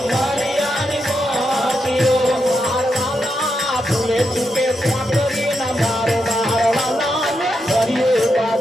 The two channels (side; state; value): both; normal; correlation 0.84